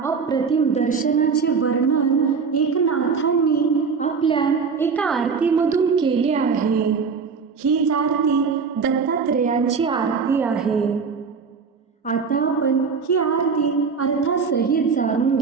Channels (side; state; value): left; quieter; 5.5 dB